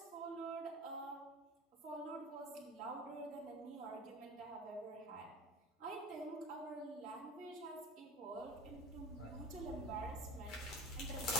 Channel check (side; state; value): both; normal; correlation 0.35